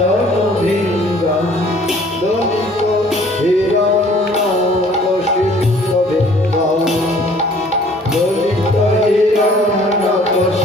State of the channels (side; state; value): both; normal; correlation 0.55